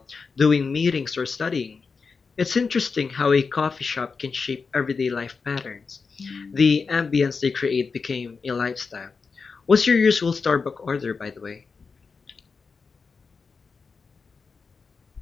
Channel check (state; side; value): quieter; right; 4.9 dB